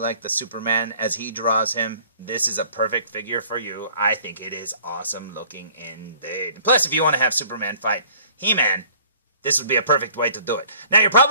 the Superman as he draws him, this is a perfect figure for you. I think it is awesome looking indeed. Plus, if you want to have Superman fight He-Man, this would be a perfect way to do it. Now, you're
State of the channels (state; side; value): inverted; both; correlation -0.54